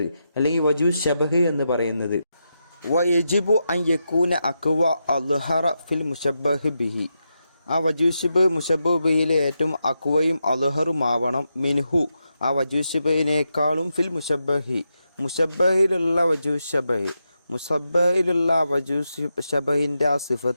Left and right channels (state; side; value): inverted; both; correlation -0.86